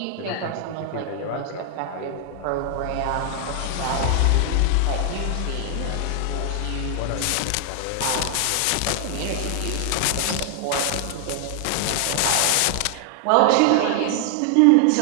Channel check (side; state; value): both; different; correlation 0.00